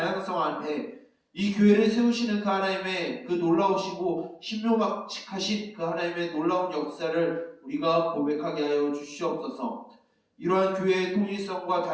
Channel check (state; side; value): identical; both; correlation 1.00